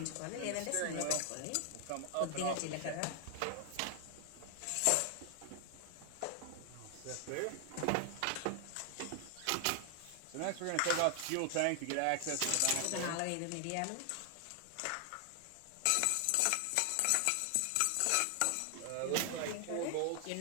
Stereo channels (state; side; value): different; both; correlation 0.00